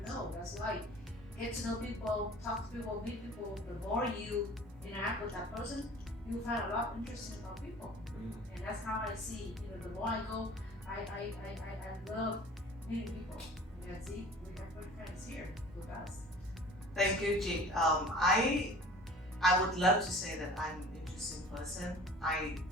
know. That's why get to know people, talk to people, meet people. The more you interact with that person, you find a lot interesting about people, and that's how I see. The more I go, I love meeting people. Yeah, see, we have Thank you, Jake. I would love to say that I'm an interesting person. I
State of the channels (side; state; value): both; normal; correlation 0.44